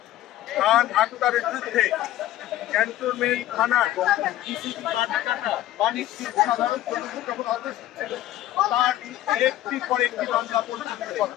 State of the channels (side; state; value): right; quieter; 13.8 dB